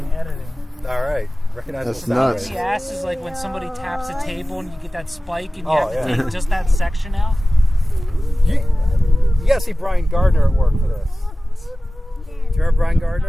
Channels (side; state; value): both; normal; correlation 0.96